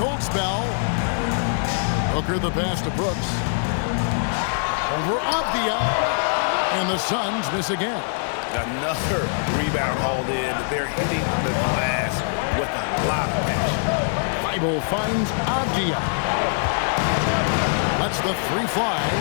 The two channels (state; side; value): silent; right; digital silence